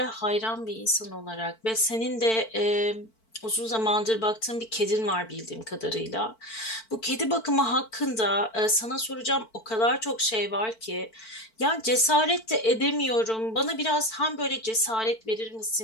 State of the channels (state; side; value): late; right; 4.5 ms